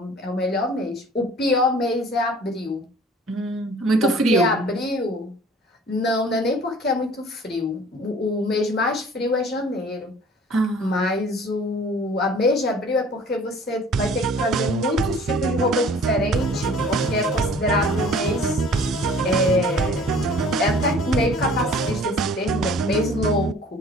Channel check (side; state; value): both; normal; correlation 0.49